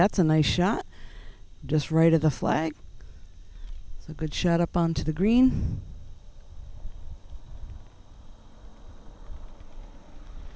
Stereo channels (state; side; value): identical; both; correlation 1.00